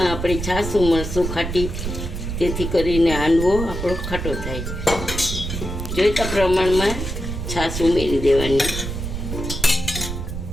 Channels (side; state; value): right; noise; rumble, 5 dB below the sound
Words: આપણે છાશ ઉમેરશું ખાટી, તેથી કરીને હાંડવો આપણો ખાટો થાય. જોઈતા પ્રમાણમાં છાશ ઉમેરી દેવાની.